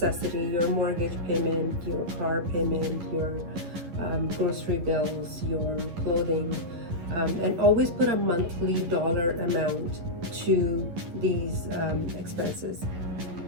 your mortgage payment, your car payment, your grocery bills, your clothing, and always put a monthly dollar amount to these expenses.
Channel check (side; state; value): left; late; 11 ms